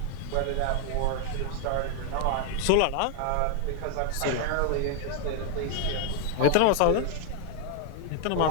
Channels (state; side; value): different; both; correlation 0.00